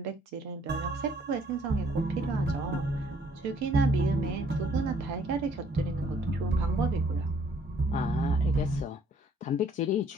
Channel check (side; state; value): both; normal; correlation 0.63